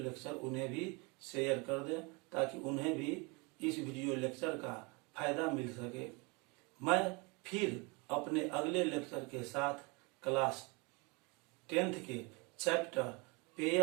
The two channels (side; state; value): left; quieter; 29.3 dB